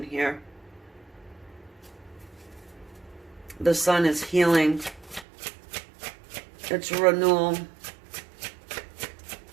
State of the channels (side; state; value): left; drops out; at 5.2 s